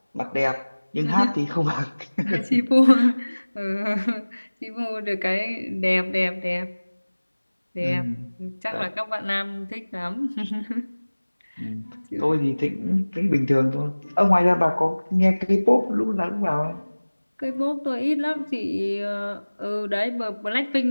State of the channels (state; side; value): inverted; both; correlation -1.00